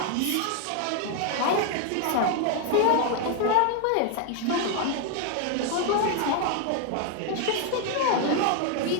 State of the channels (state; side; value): different; both; correlation 0.00